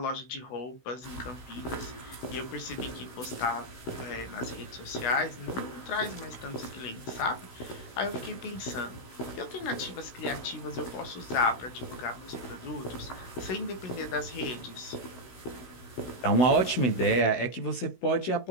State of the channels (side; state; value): right; late; 16 ms